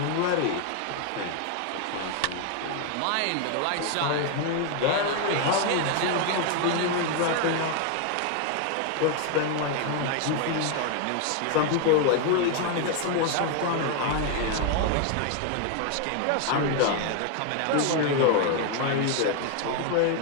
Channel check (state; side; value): different; both; correlation 0.01